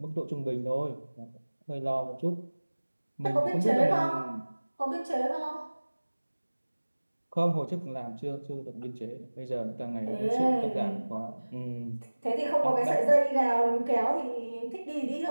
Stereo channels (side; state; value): both; inverted; correlation -1.00